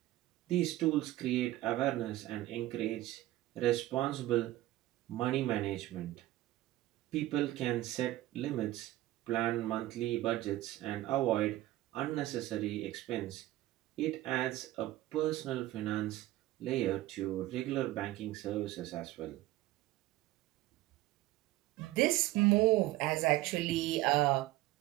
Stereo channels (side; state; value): left; quieter; 16.2 dB